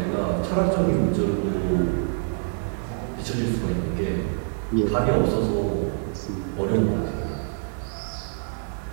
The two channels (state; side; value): silent; left; 61 dB below the other